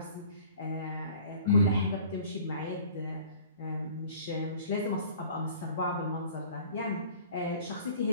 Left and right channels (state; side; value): inverted; both; correlation -0.48